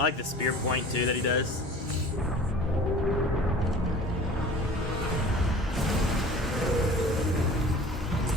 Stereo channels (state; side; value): normal; both; correlation 0.43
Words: like the spear point too that he does.